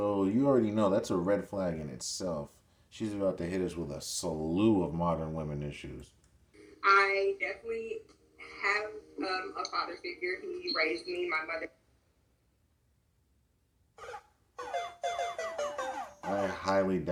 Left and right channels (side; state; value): both; identical; correlation 1.00